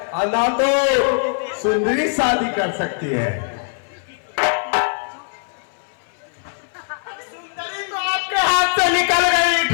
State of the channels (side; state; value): right; silent; 59 dB below the other